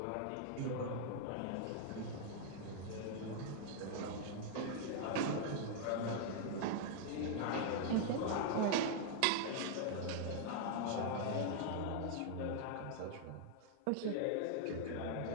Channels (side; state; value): both; different; correlation 0.00